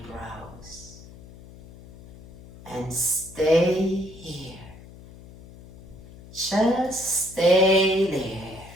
and stay here. Just stay there.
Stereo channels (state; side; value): noise; left; hum, 19 dB below the sound